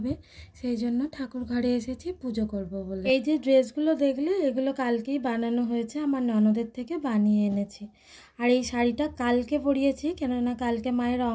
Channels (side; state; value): both; identical; correlation 1.00